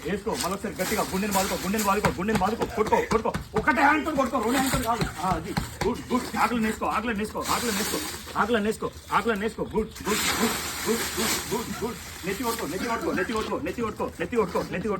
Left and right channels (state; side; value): identical; both; correlation 1.00